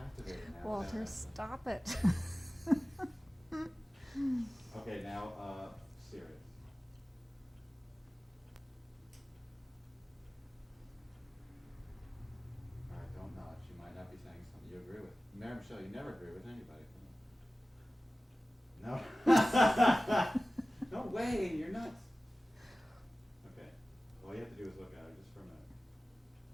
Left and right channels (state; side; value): normal; both; correlation 0.96